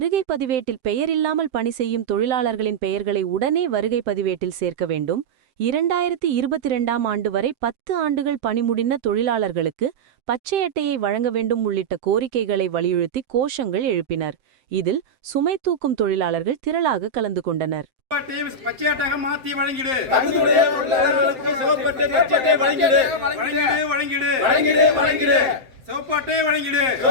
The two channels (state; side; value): late; left; 7.7 ms